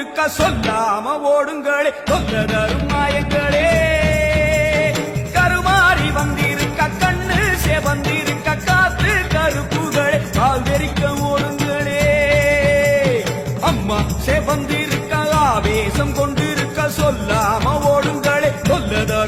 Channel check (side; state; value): both; identical; correlation 1.00